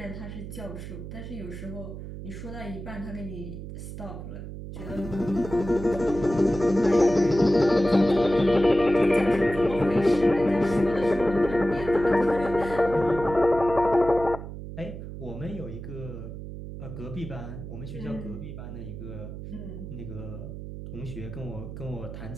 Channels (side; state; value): right; noise; hum, 10 dB below the sound